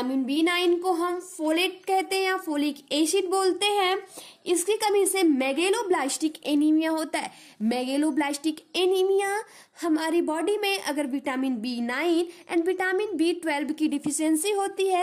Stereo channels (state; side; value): identical; both; correlation 1.00